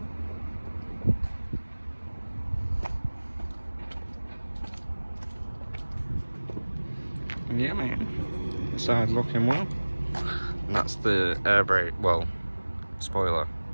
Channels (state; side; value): inverted; both; correlation -1.00